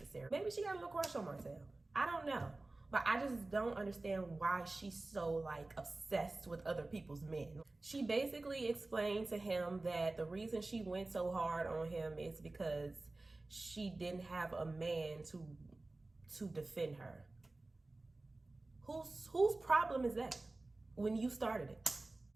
Maybe she got a little crush on Martell. I don't know. But I just don't understand why she's so like obsessed with other people's men. She basically explained to him that the reason she went so hard on him is because she didn't have a man to defend her. Whose problem is that when you started it?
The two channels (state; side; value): quieter; left; 3.1 dB